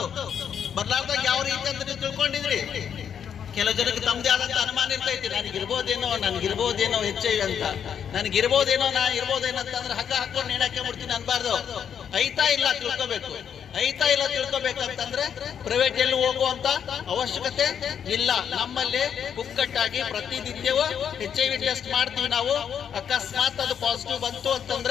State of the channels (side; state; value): right; quieter; 8.2 dB